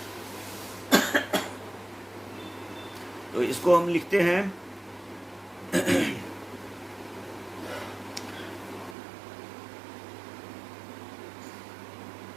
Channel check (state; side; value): drops out; left; at 9.0 s